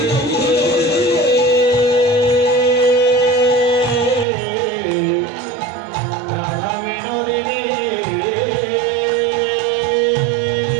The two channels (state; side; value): drops out; left; at 4.2 s